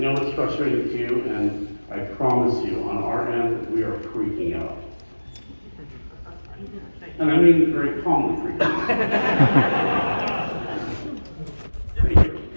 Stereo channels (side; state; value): both; inverted; correlation -1.00